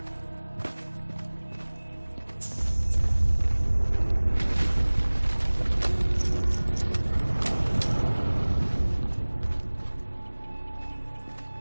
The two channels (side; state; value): both; inverted; correlation -1.00